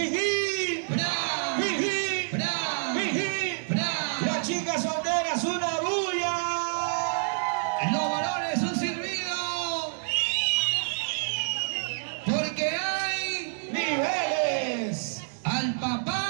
¡Bra! ¡Jijí! ¡Bra! ¡Jijí! ¡Bra! Las chicas solteras, una bulla. Los varones un silbido. Porque hay ¡Niveles! al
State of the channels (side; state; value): left; silent; digital silence